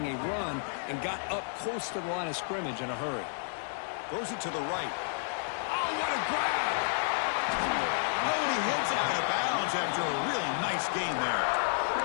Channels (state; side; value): silent; right; digital silence